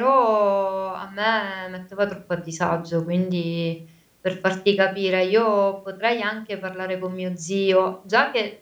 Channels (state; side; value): identical; both; correlation 1.00